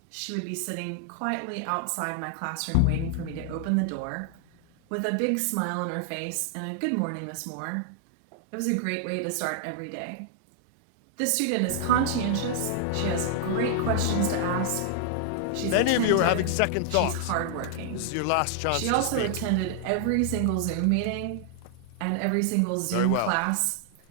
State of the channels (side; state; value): both; different; correlation -0.01